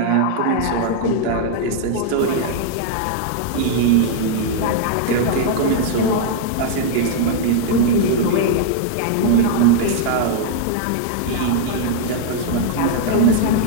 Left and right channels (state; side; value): different; both; correlation -0.01